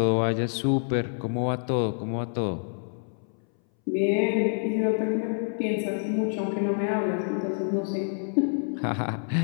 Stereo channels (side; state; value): right; silent; 60 dB below the other